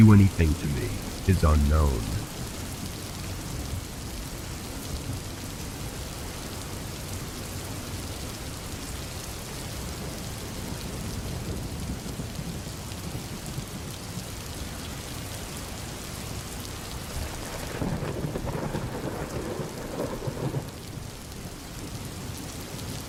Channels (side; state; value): both; identical; correlation 1.00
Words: anything to me is unknown.